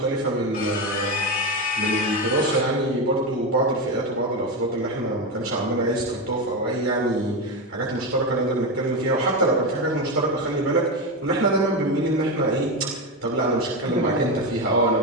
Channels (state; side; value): normal; both; correlation 0.14